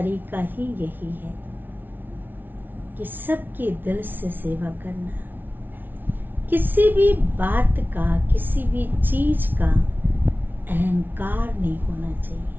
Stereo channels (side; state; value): left; late; 0.092 ms